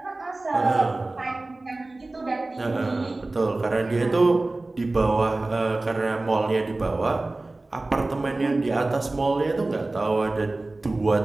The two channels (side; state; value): left; quieter; 3.0 dB